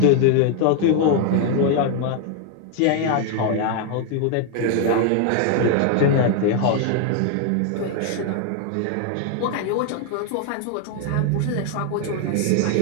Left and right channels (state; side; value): different; both; correlation 0.00